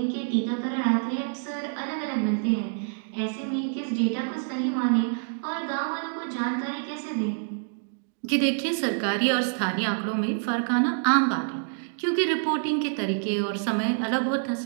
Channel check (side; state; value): left; silent; digital silence